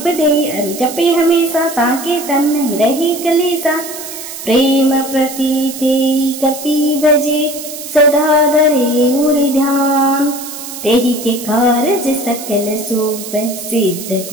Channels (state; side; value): noise; right; hiss, 10 dB below the sound